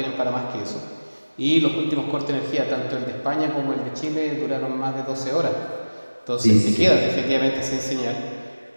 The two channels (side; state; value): both; inverted; correlation -1.00